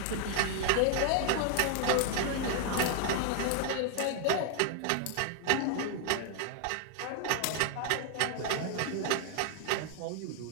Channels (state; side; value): different; both; correlation 0.00